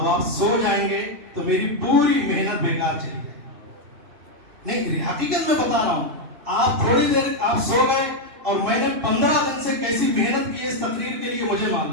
آپ سو جائیں گے تو میری پوری محنت بیکار چلی جائے گی۔ نہیں، حقیقت میں بتا رہا ہوں، آپ تھوڑی دیر آپ سو گئے اور میں نے 15 دن سے کیسی محنت کی اس تقریر کے لیے مجھے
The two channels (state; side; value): late; left; 2.6 ms